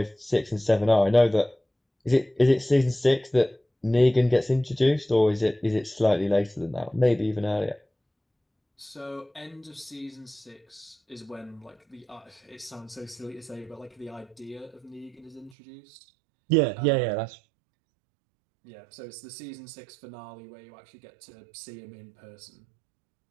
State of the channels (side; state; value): left; drops out; at 15.6 s